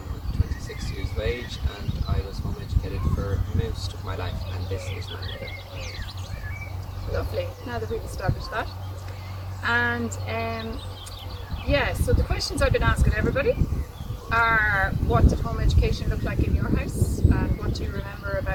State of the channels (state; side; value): identical; both; correlation 1.00